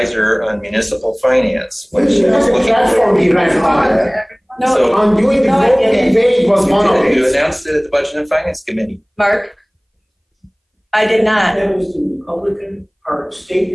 on municipal finance, which is looking No, on doing the vote, debate was one of it. You announced it at the Budget and Finance Committee. Mark? I did not. That was the Republican Party,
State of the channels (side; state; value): both; identical; correlation 1.00